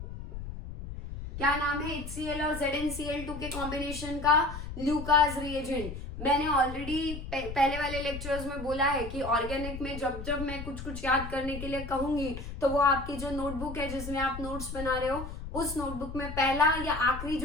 क्या नाम है HCl और ZnCl2 के कॉम्बिनेशन का? Lucas reagent. मैंने ऑलरेडी पहले वाले लेक्चर्स में बोला है कि ऑर्गेनिक में जब जब मैं कुछ कुछ याद करने के लिए कहूंगी, तो वो आपकी जो नोटबुक है जिसमें आप नोट्स बना रहे हो, उस नोटबुक में पहला या आखिरी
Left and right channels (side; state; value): left; noise; rumble, 9 dB below the sound